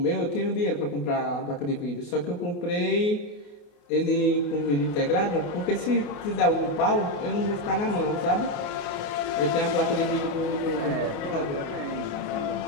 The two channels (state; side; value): late; right; 28 ms